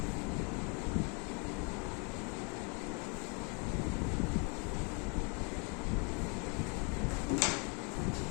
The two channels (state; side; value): quieter; right; 34.3 dB